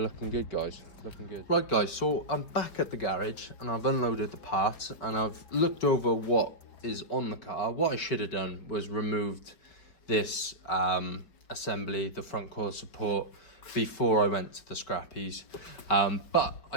good, guys, looking good. Right guys, so I'm back at the garage and I've unloaded the parts and I've looked over what is on the car. What I should have done was removed this assembly, the front core support, before I went to the scrappies, but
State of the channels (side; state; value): right; late; 5.3 ms